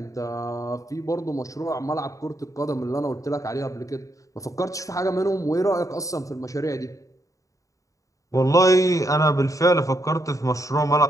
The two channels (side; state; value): right; late; 0.16 ms